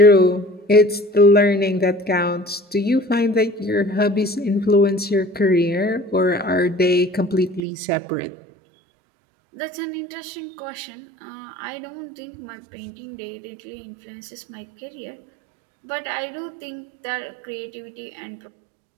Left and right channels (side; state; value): left; drops out; at 7.6 s